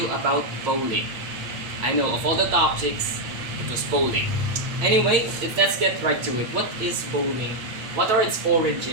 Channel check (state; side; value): late; left; 8.6 ms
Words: about bowling. I know, of all the topics, it was bowling. Anyway, let's get right to it. What is bowling? What are its